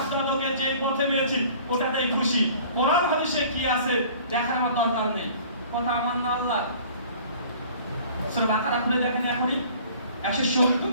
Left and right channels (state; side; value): inverted; both; correlation -0.49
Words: দাদাকে যেই পথে পেয়েছি ওটাতেই খুশি। কোরআন হাদিসে কি আছে দেখার আমার দরকার নেই। কথা আমার না আল্লাহ। সূরা বাকারা খুলে দেখেন এখনই 170